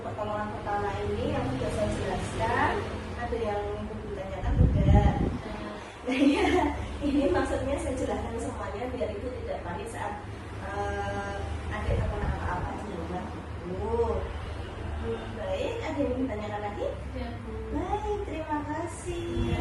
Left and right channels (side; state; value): both; identical; correlation 1.00